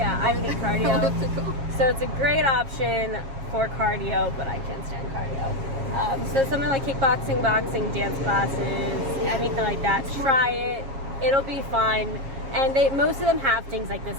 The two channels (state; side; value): late; left; 7.4 ms